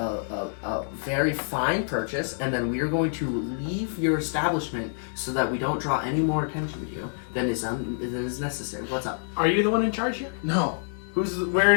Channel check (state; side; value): silent; right; digital silence